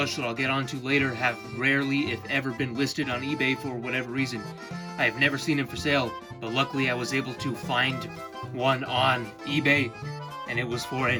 that I'll get onto later have rarely, if ever, been listed on eBay for whatever reason. I have never seen them for sale, but luckily I was able to find one on eBay, and it was for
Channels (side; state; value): both; identical; correlation 1.00